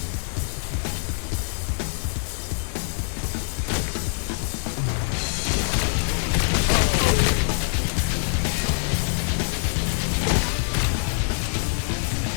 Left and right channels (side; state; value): right; silent; 62 dB below the other